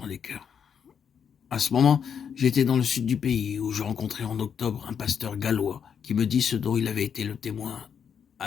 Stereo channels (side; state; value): right; quieter; 7.4 dB